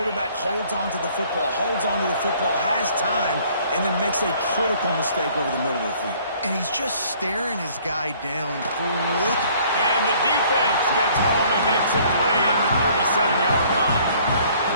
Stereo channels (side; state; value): both; inverted; correlation -0.58